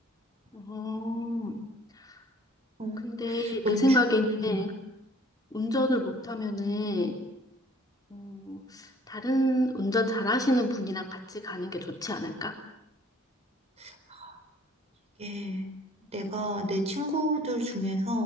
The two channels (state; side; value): normal; both; correlation 0.56